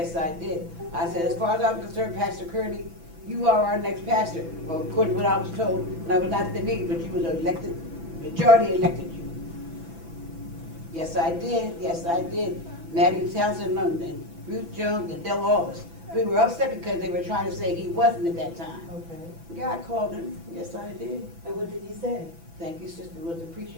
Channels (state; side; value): late; left; 6.0 ms